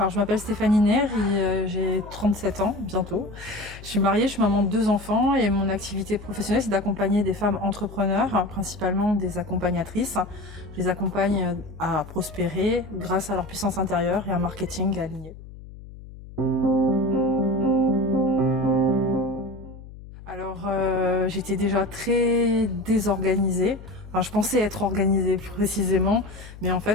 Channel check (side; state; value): left; noise; hum, 16 dB below the sound